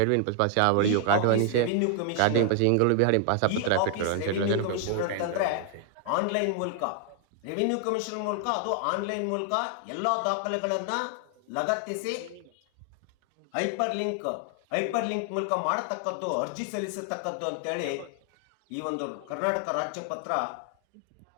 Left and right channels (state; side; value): different; both; correlation 0.00